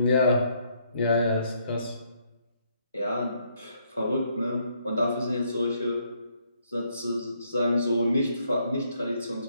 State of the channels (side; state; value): both; inverted; correlation -0.72